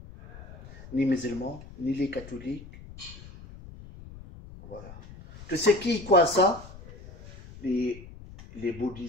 Ni musulmans, ni les catholiques. Voilà. Tu sais qui croit à ça? Les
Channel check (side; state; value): left; noise; rumble, 17 dB below the sound